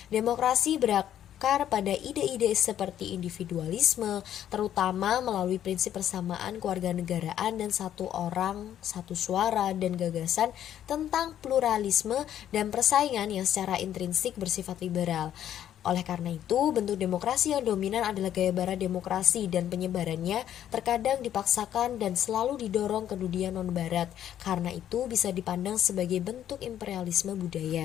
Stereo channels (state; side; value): quieter; right; 10.8 dB